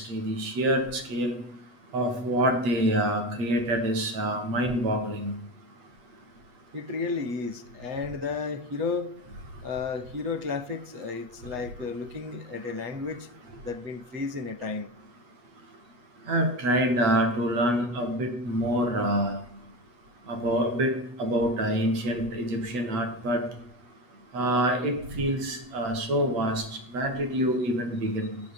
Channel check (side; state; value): left; late; 8.2 ms